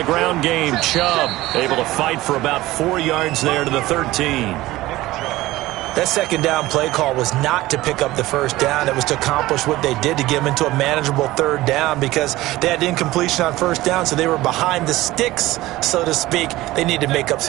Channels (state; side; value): quieter; left; 17.6 dB